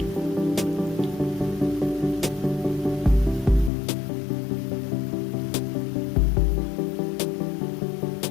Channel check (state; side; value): drops out; right; at 3.7 s